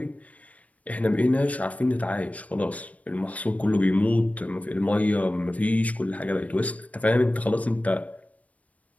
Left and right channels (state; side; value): late; right; 0.068 ms